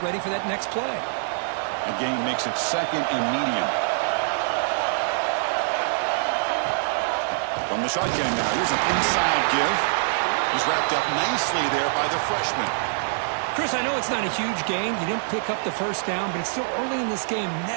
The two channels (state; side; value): silent; left; digital silence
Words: ready for that next play. The gain makes it second and medium. From the shotgun now, here's an inside give. He's wrapped up nicely there by the freshman. Chris, I know it's not a huge gain. You didn't pick up the first down, but it's still early in this game.